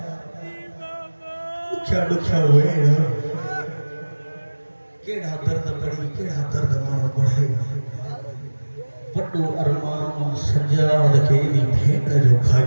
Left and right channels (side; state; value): both; inverted; correlation -1.00